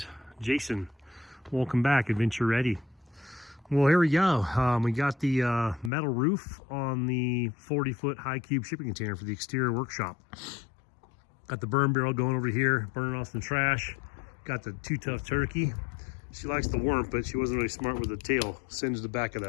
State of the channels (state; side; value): drops out; right; at 5.9 s